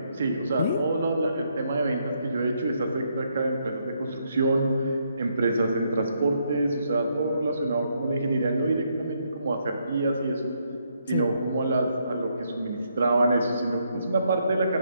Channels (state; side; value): inverted; both; correlation -0.75